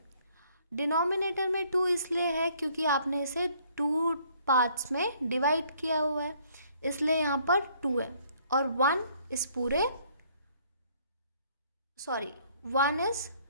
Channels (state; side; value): inverted; both; correlation -0.63